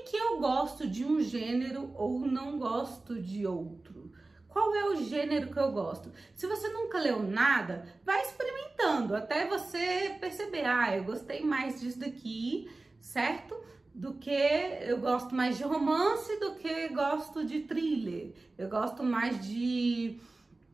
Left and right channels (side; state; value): left; quieter; 3.2 dB